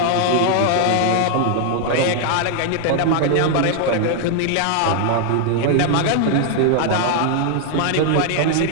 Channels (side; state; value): both; different; correlation 0.00